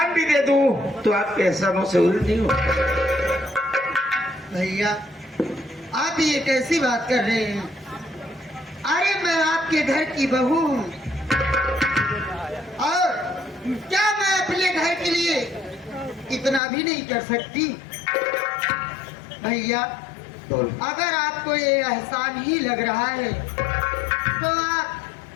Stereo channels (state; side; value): drops out; right; at 16.6 s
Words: भी दे दूं तो आपके एहसानों से उल्टी नहीं हो। भैया आप ये कैसी बात कर रहे हैं? अरे मैं आपके घर की बहू हूँ और क्या मैं अपने घर के लिए इतना भी नहीं कर सकती? भैया अगर आपको ये एहसान ही लग रहा है तो